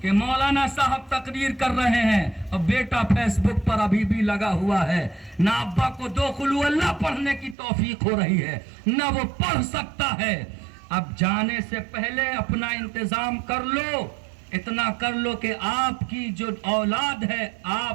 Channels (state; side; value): drops out; left; at 7.6 s